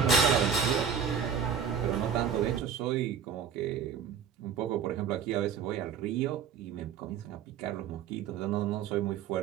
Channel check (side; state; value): left; quieter; 7.3 dB